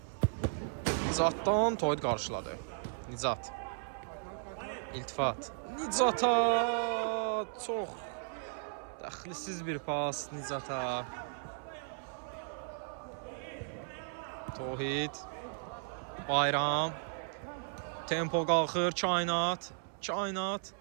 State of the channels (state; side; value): silent; left; 54 dB below the other